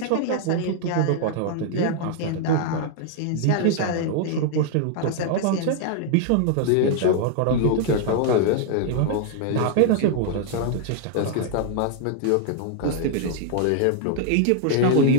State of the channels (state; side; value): different; both; correlation -0.01